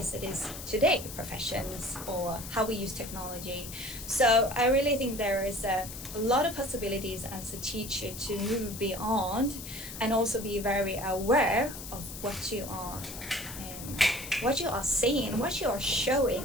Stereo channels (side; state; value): left; noise; hiss, 11 dB below the sound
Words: it is today, professions or how we use technology. So I really think there is a lot of possibilities as a teacher to move beyond, and also be very aware of what you are saying, what you are showing.